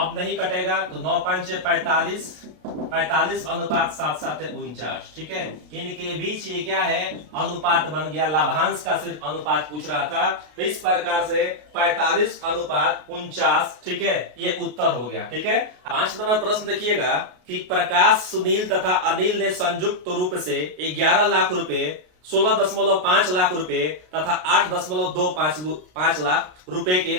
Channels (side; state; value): left; late; 33 ms